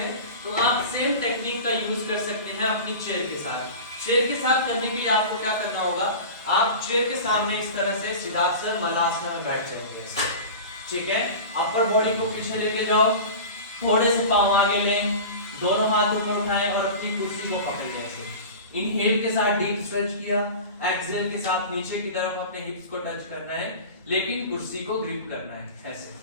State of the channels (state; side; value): inverted; both; correlation -0.33